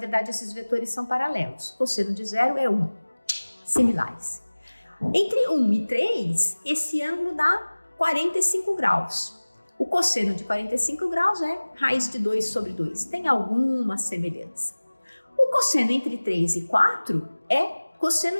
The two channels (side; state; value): both; inverted; correlation -1.00